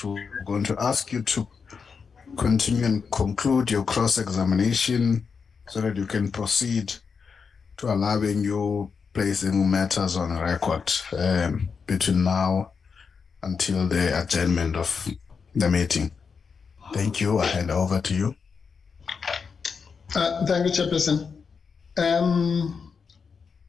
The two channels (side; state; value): right; quieter; 5.7 dB